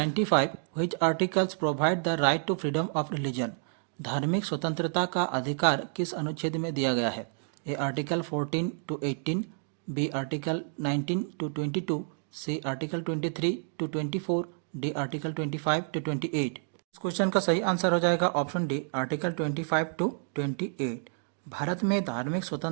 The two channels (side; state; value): left; silent; 57 dB below the other